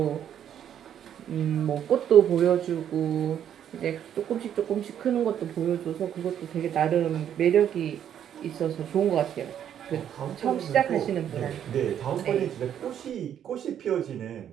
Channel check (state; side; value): quieter; left; 9.7 dB